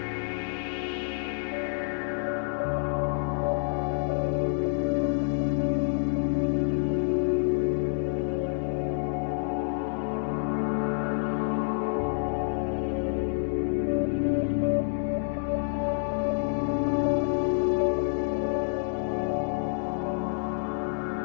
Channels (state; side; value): silent; right; digital silence